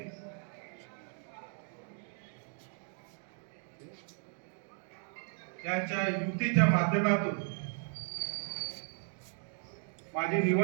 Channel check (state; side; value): silent; left; 54 dB below the other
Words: यांच्या युतीच्या माध्यमातून माझी